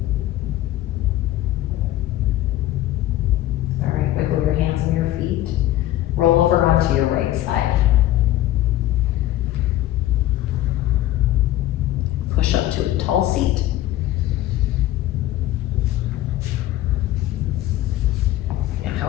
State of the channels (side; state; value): right; quieter; 14.5 dB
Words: All right, wiggle your hands and your feet. Roll over onto your right side. Push up to a tall seat.